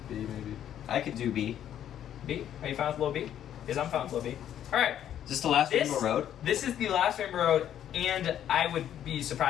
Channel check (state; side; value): quieter; right; 10.5 dB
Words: B maybe. I could do B. B? Are you fine with low B? Because I'm fine with low B. All right. Is this the last This- Rainbow Road? This is the last Rainbow Road, and I would be